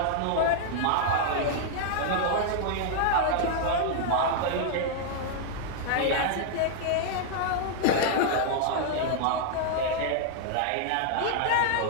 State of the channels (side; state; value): both; different; correlation -0.01